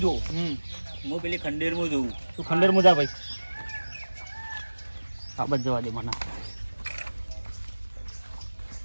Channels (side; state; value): both; inverted; correlation -1.00